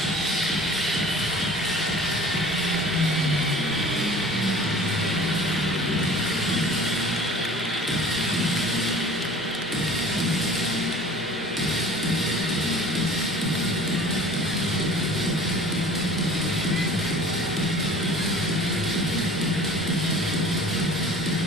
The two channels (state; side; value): normal; both; correlation 0.45